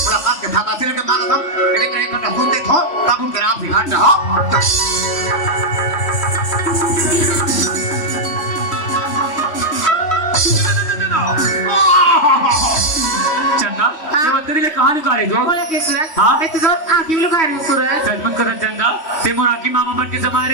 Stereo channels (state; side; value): late; right; 3.1 ms